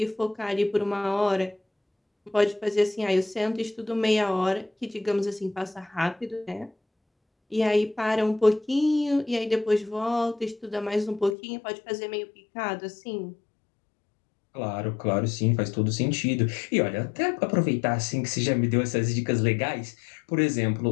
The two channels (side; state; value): right; drops out; at 11.4 s